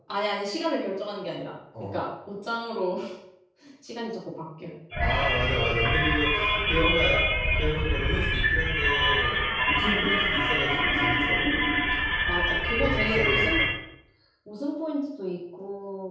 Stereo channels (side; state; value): both; identical; correlation 1.00